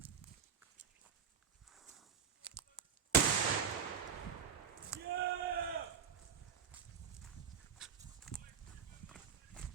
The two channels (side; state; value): left; quieter; 7.2 dB